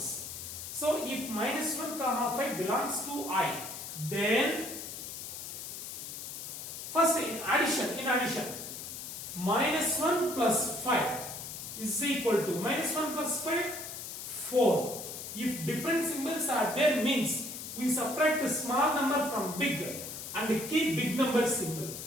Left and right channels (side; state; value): left; noise; hiss, 8 dB below the sound